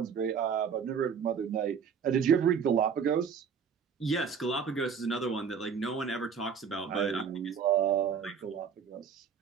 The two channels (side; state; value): left; quieter; 6.8 dB